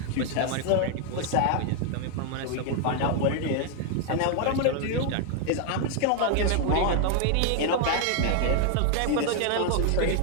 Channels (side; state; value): both; different; correlation 0.00